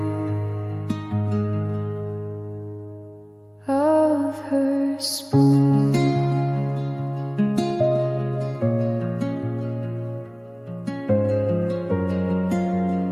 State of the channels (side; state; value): both; identical; correlation 1.00